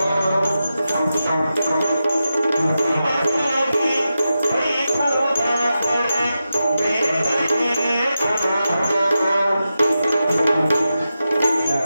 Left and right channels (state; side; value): inverted; both; correlation -0.91